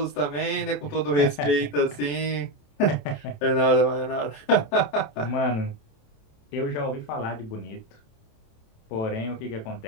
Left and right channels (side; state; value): right; late; 27 ms